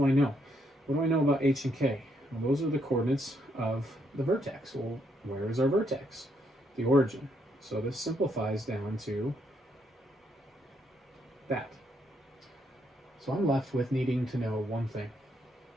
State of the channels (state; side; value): normal; both; correlation 0.75